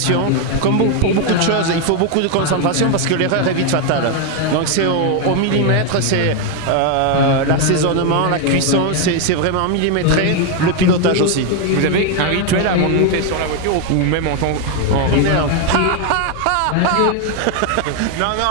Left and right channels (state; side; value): different; both; correlation 0.01